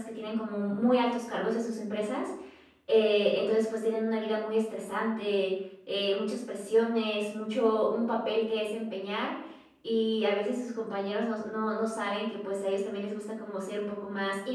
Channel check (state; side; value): identical; both; correlation 1.00